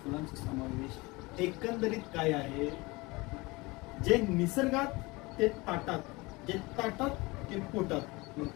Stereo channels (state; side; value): quieter; right; 23.8 dB